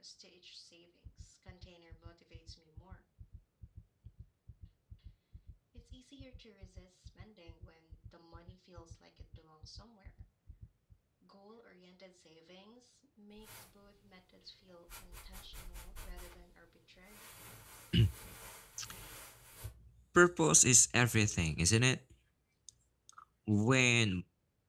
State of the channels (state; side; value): identical; both; correlation 1.00